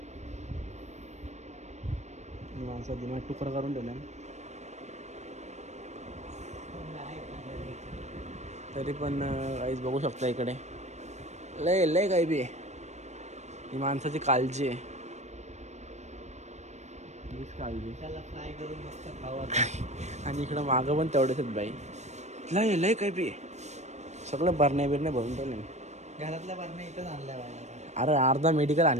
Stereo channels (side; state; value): left; late; 0.33 ms